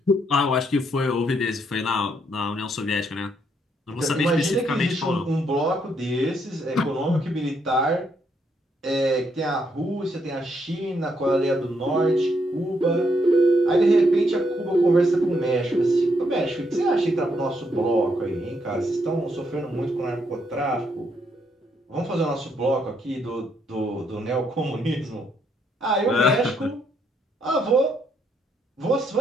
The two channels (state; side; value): normal; both; correlation 0.74